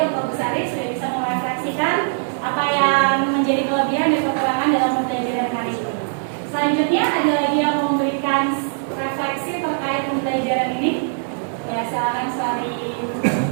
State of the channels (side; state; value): left; silent; digital silence